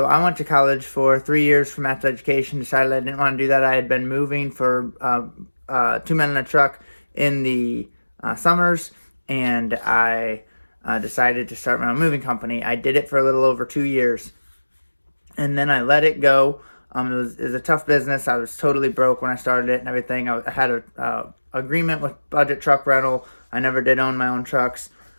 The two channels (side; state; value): both; inverted; correlation -1.00